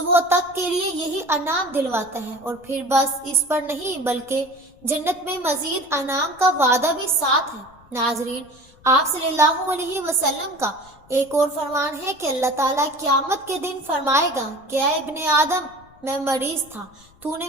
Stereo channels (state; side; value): noise; left; rumble, 28 dB below the sound